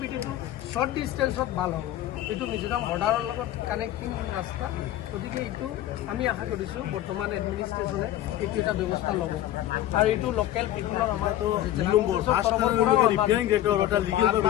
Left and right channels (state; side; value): quieter; right; 13.3 dB